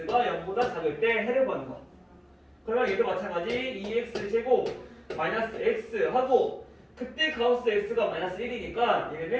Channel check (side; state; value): both; identical; correlation 1.00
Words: 0보다 작을 때 해를 구하는 거. 그러면 얘도 마찬가지 2x 제곱 마이너스 x 하고 그때 가우스 x가 마이너스 1이니까